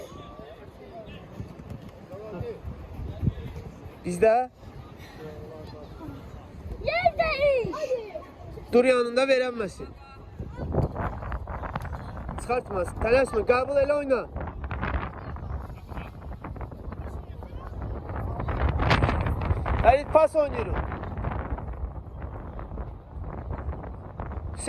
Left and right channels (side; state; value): both; identical; correlation 1.00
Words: Bizdə Yerdeyiz. dur yanında verənməsin. Çıxartmasın. Tələsmə, qəbul elə oyna. Həlit pas oynayırıq.